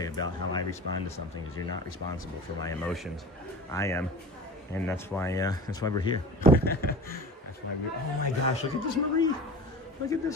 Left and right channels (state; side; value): normal; both; correlation 0.36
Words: about how I respond to something, because you're not responsible for my emotions. I am, and that's why we're here. That's why we're. Oh my gosh! Look at this Marie. Look at